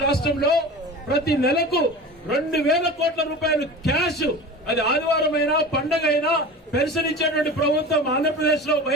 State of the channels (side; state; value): both; normal; correlation 0.34